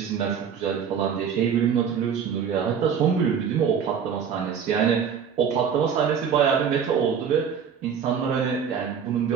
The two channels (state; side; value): quieter; left; 7.3 dB